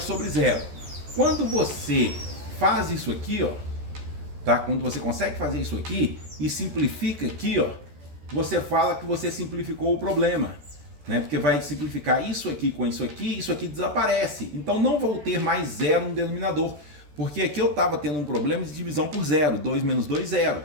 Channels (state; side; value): late; left; 14 ms